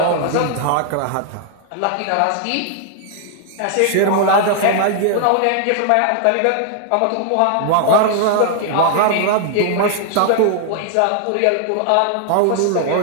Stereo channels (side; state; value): both; different; correlation 0.00